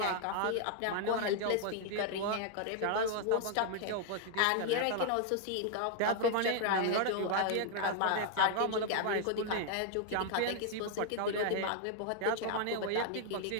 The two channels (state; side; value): different; both; correlation 0.00